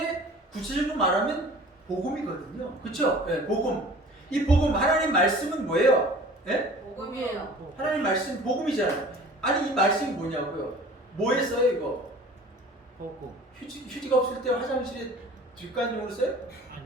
구체적으로 말하면 복음이거든요. 그렇죠? 예, 복음. 이 복음 하나님 말씀은 뭐예요? 예? 복음이에요. 하나님 말씀 복음이잖아요. 아니 이 말씀이 뭐냐고요? 뭐에 써요 이거? 복음. 휴지가 없을 때 화장실에 뒷간용으로 써요?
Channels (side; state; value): both; normal; correlation 0.45